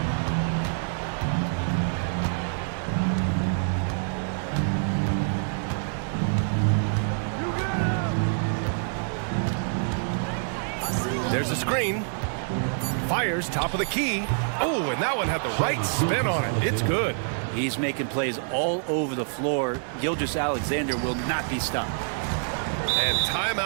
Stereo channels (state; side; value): silent; left; 61 dB below the other